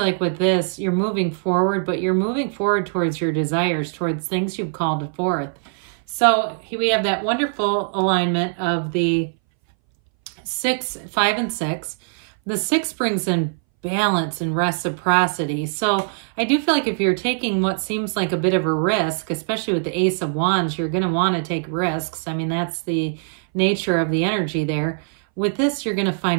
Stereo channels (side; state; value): left; silent; 61 dB below the other